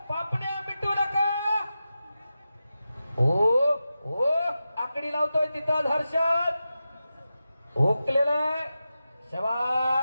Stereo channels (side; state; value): both; inverted; correlation -0.92